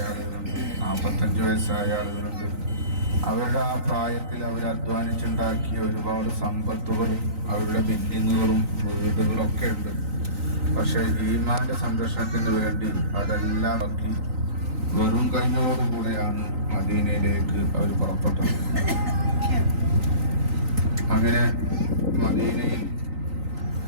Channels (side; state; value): left; late; 3.9 ms